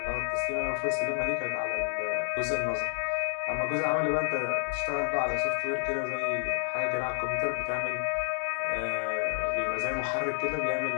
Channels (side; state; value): right; silent; digital silence